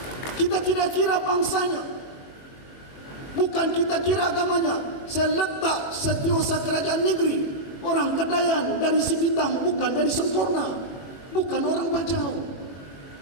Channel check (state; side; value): late; right; 21 ms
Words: Kita tidak kira bangsanya, bukan kita kira agamanya. Saya letak Setiausaha Kerajaan Negeri, orang Kedayan dari Sipitang, bukan dari Sempurna, bukan orang Bajau.